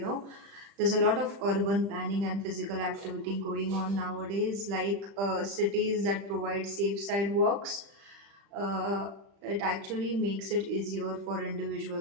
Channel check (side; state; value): left; late; 35 ms